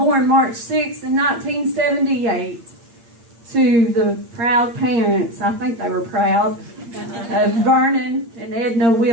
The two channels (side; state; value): left; late; 8.6 ms